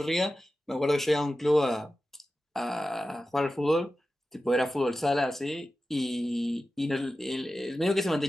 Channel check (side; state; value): both; normal; correlation 0.94